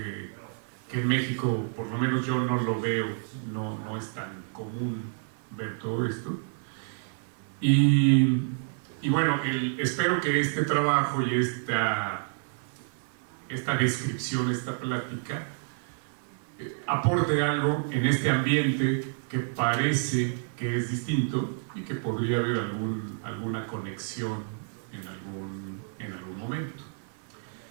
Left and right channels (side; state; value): left; silent; 55 dB below the other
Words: en México, por lo menos yo no lo veo, no es tan común ver todo esto. Y bueno, espero que este trabajo y esta descripción, esta plática, aporte algo en este ambiente que parece que es distinto y que podría haber alguna conexión en algún momento.